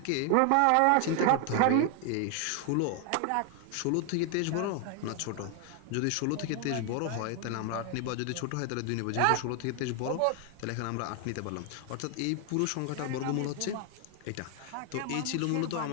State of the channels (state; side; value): different; both; correlation 0.00